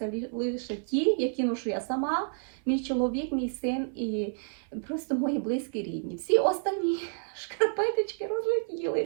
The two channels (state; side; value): silent; left; 58 dB below the other